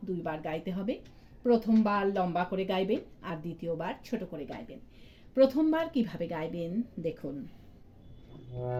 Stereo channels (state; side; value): identical; both; correlation 1.00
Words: দুইবার গাইতে হবে। প্রথমবার লম্বা করে গাইবেন আর দ্বিতীয়বার ছোট করে গাইবেন। প্রথমবার কিভাবে গাইবেন দেখুন,